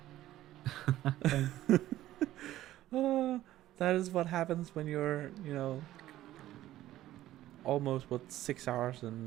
That is what happens when you're, almost 6 hours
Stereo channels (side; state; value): left; quieter; 14.2 dB